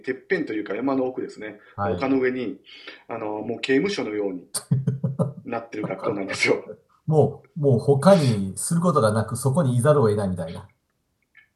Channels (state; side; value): identical; both; correlation 1.00